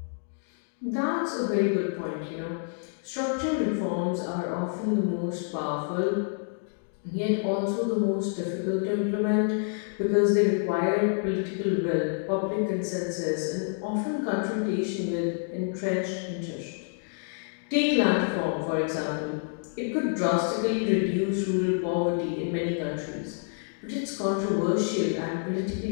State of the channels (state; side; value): silent; right; 59 dB below the other